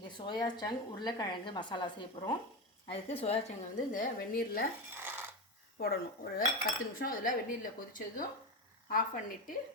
soya chunk உருளைக்கிழங்கு மசாலா செய்ய போகிறோம். அதுக்கு சோயா சங்கை வந்து இந்த வெந்நீரில் போடணும். ஒரு 10 நிமிஷம் அதில் வெந்நீரில் கொதித்ததும் ஆஃப் பண்ணிவிட்டு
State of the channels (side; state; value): both; normal; correlation 0.17